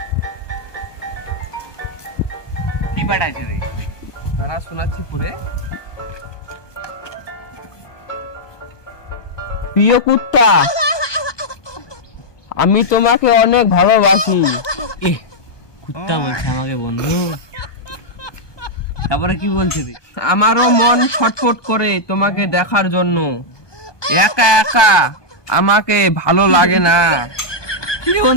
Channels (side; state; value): right; late; 1.2 ms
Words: কি পাঠাচ্ছে রে? তারা শোনাচ্ছি পরে। প্রিয় কুত্তা, আমি তোমাকে অনেক ভালোবাসি। এ কুত্তা বলছে আমাকে বন্ধু। তারপরে কি বলছে রে? আমারও মন ছটফট করে তোমাকে দেখার জন্য। একা একা আমাকে ভালো লাগে না। কি রে